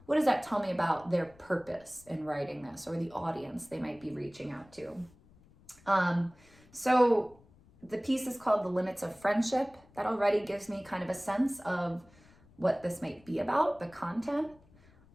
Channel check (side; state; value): left; noise; rumble, 27 dB below the sound